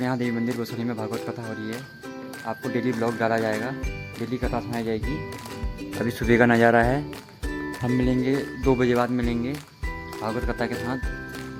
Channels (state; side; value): identical; both; correlation 1.00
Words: यहाँ देवी मंदिर बसोली में भागवत कथा हो रही है। आपको डेली ब्लॉग डाला जाएगा, डेली कथा सुनाई जाएगी। अभी सुबह का नज़ारा है। हम मिलेंगे 2 बजे बाद मिलेंगे भागवत कथा के साथ।